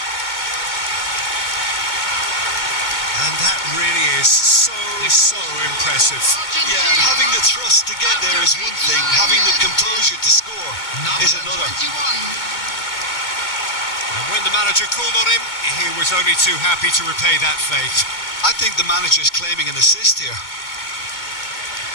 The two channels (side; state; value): right; late; 2.2 ms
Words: And that really is so impressive. Yeah, having the thrust to get there is one thing. Having the composure to score is another. And when the manager called on him, he was only too happy to repay that faith. I think the manager's claiming an assist here.